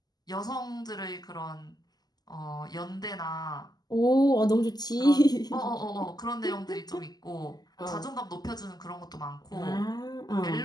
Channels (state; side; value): late; right; 0.20 ms